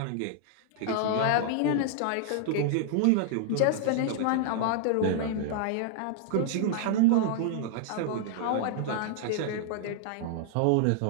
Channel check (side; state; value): both; different; correlation -0.01